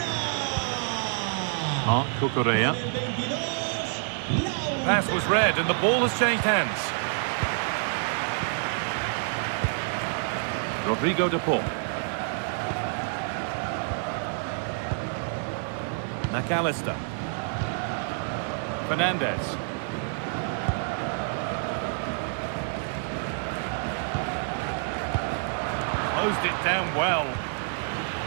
Marc Cucurella. Pass was read and the ball has changed hands. Rodrigo de Paul. McAllister. Fernandez. Closed it down well.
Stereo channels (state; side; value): silent; left; 60 dB below the other